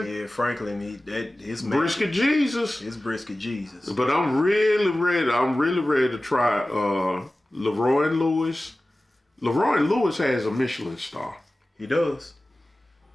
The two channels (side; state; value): both; normal; correlation 0.96